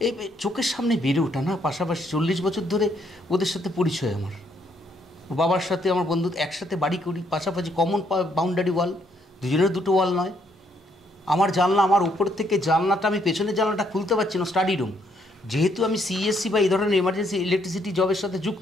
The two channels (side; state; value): both; normal; correlation 0.71